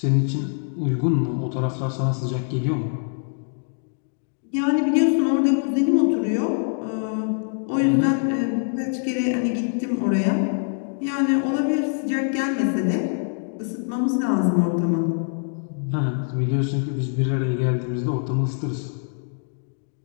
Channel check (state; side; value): silent; right; 63 dB below the other